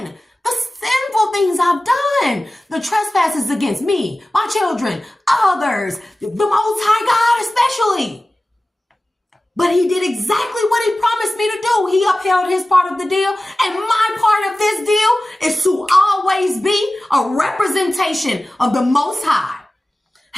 The sinful things I've done. The trespasses against me, my children, others, the Most High God especially. But he did exactly what he promised me to do. He upheld his part of the deal. And my part of this deal is to always always be a representation of the Most High.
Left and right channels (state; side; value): normal; both; correlation 0.96